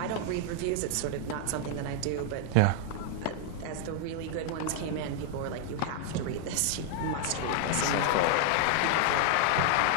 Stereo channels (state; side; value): different; both; correlation 0.00